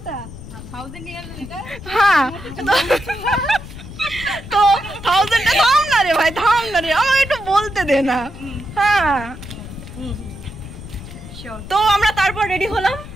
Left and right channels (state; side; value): noise; left; rumble, 13 dB below the sound